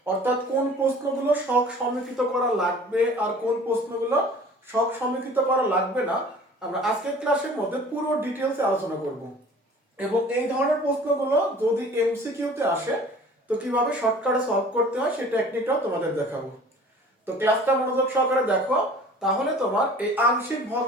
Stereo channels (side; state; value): both; normal; correlation 0.47